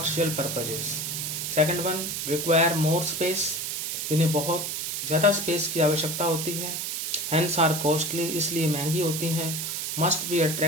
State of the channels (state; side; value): noise; right; hiss, 3 dB below the sound